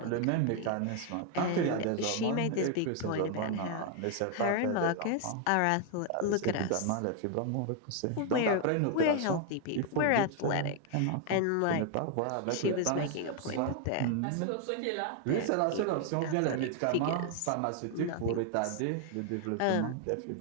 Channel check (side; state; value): both; different; correlation 0.00